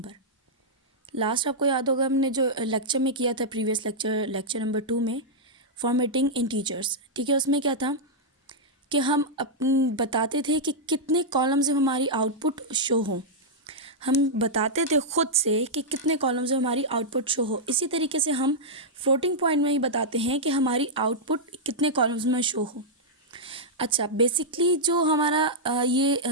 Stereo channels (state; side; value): normal; both; correlation -0.07